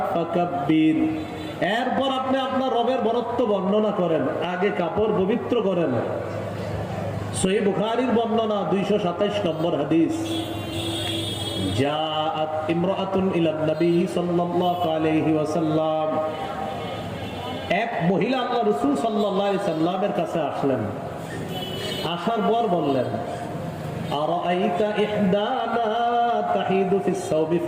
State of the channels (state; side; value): identical; both; correlation 1.00